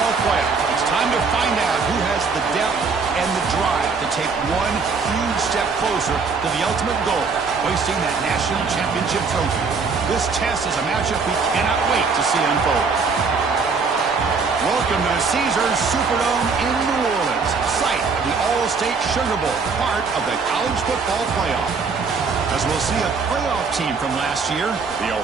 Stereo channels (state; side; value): quieter; left; 4.8 dB